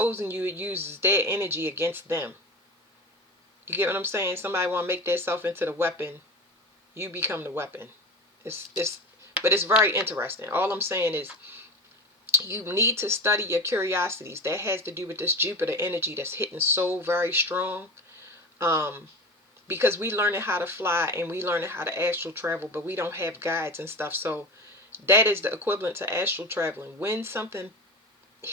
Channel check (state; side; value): normal; both; correlation 0.29